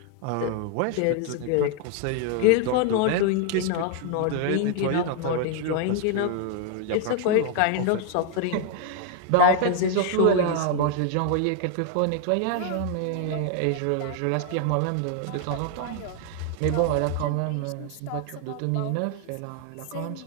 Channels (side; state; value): both; different; correlation 0.00